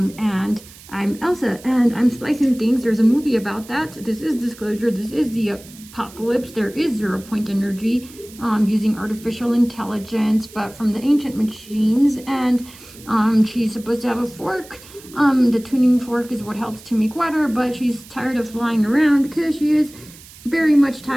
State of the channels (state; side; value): noise; right; hiss, 20 dB below the sound